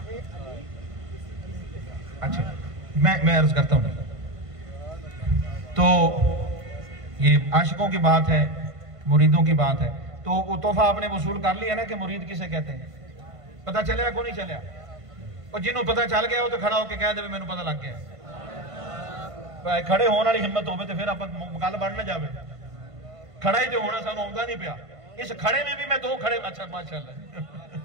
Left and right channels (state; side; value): late; left; 1.5 ms